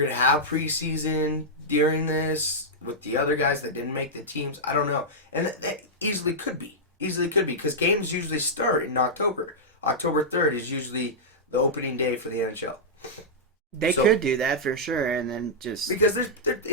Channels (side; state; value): both; normal; correlation -0.09